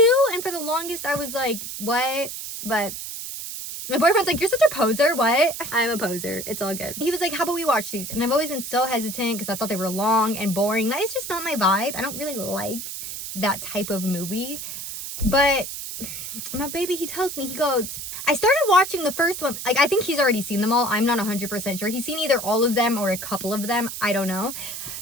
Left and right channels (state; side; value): noise; right; hiss, 8 dB below the sound